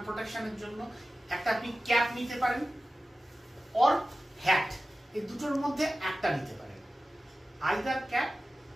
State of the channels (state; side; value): normal; both; correlation 0.95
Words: প্রোটেকশনের জন্য একটা আপনি ক্যাপ নিতে পারেন, অর হ্যাট। এই দুটোর মধ্যে একটা নিতে পারেন, আইদার ক্যাপ